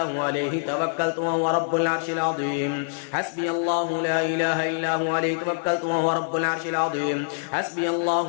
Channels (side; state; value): right; silent; digital silence